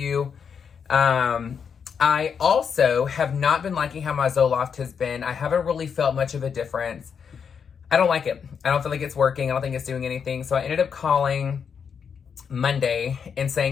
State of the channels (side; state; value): right; quieter; 6.8 dB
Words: I also have not been liking how my Zoloft has been. I haven't really felt much of a difference. I don't like it. I don't feel like it's working. I don't think it's doing anything. So I ended up calling Monday and